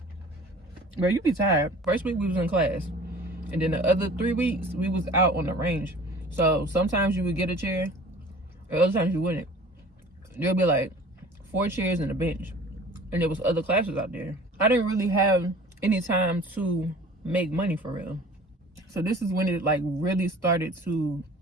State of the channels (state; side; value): normal; both; correlation 0.46